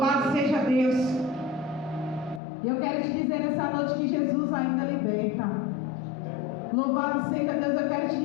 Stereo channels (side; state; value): right; drops out; at 2.4 s